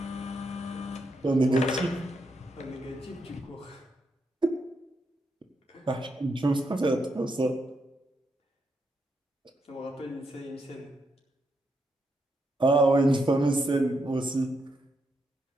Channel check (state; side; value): normal; both; correlation 0.81